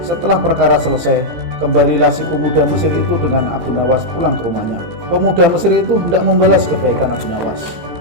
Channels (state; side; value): late; left; 18 ms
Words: perkara selesai, kembalilah si pemuda Mesir itu dengan Abu Nawas pulang ke rumahnya. Pemuda Mesir itu hendak membalas kebaikan Abu Nawas.